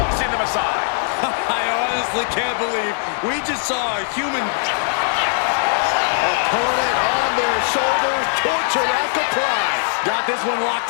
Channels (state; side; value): silent; right; digital silence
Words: them aside. I honestly can't believe we just saw a human... Opponent on their shoulders, torture rack applied. Got this one